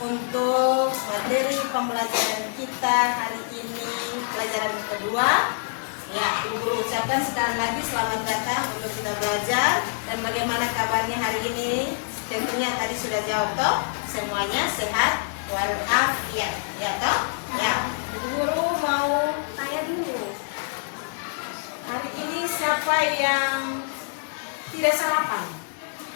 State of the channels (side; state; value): right; silent; digital silence